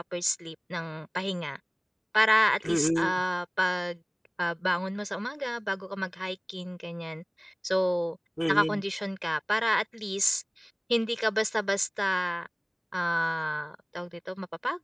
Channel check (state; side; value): identical; both; correlation 1.00